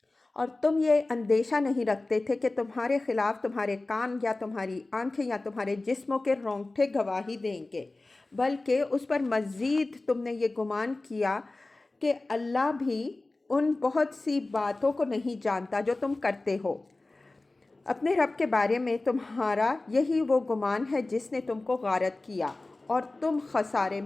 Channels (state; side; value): quieter; right; 3.1 dB